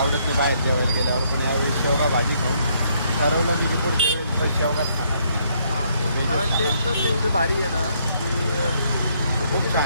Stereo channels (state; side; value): inverted; both; correlation -0.70